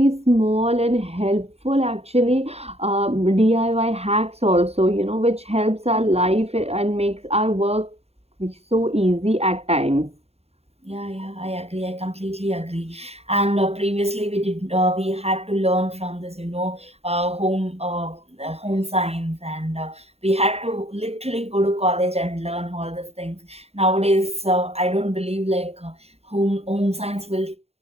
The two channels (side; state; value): left; late; 0.30 ms